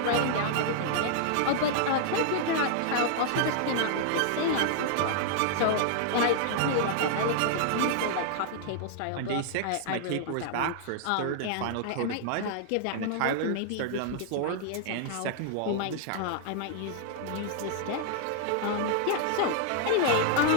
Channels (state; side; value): different; both; correlation -0.01